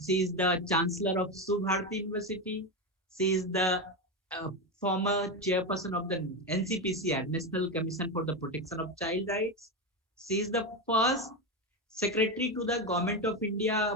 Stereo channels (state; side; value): normal; both; correlation 0.13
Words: she is the Chancellor of Subharati University. She is the former chairperson of the NCPCR, National Commission for the Protection of Child Rights. She is the first secretary to the Government of